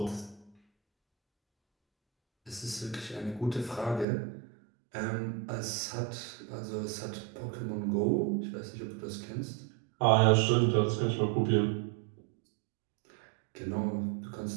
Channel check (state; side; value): drops out; left; at 4.0 s